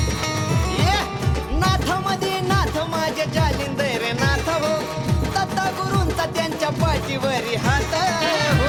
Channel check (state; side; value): identical; both; correlation 1.00